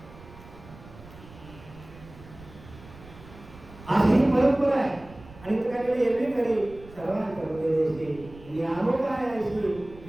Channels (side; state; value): right; noise; rumble, 19 dB below the sound